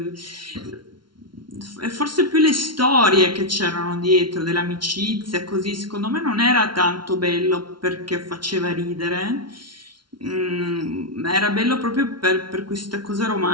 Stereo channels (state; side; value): late; left; 0.73 ms